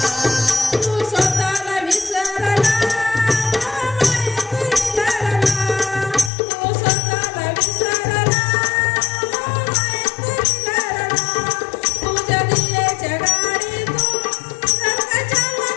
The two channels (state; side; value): drops out; right; at 6.3 s